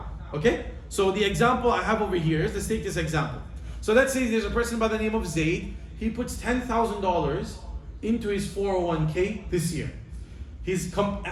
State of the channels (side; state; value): both; identical; correlation 1.00